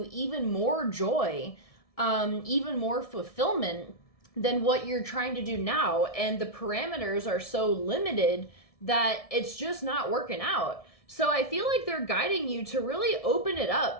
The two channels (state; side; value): late; right; 1.7 ms